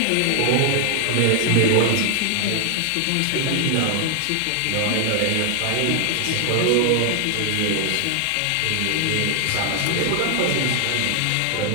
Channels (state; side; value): different; both; correlation 0.00